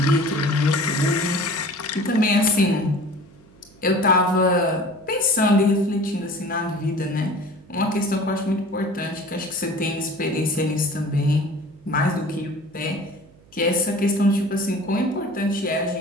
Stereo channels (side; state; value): right; noise; hum, 27 dB below the sound